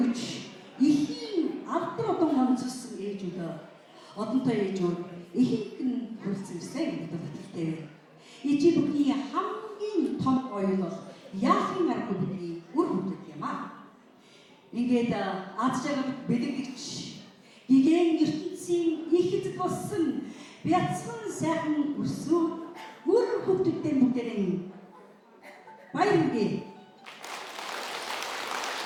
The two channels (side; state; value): both; identical; correlation 1.00